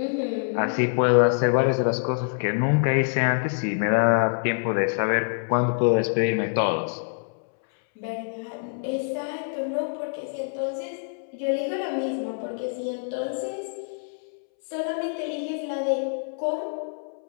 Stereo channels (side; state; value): right; silent; 61 dB below the other